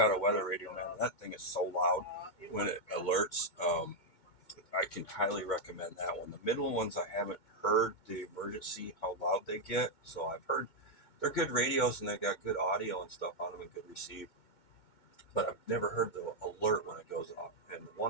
a weather radio now, and that thing is so loud when it alerts. I can highly recommend that one. The middle ones, I haven't heard the emergency, how loud they get. So I've heard they're good radios, and they got good audio and stuff on them and good receive. But I've never heard the alert when it goes off. And the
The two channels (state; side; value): late; right; 2.2 ms